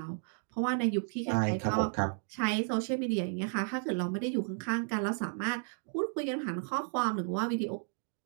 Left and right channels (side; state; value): left; silent; 56 dB below the other